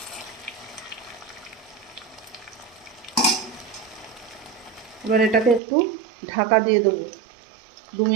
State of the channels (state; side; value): drops out; left; at 5.6 s